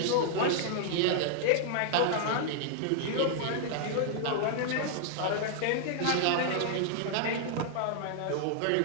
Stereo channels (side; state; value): both; different; correlation -0.01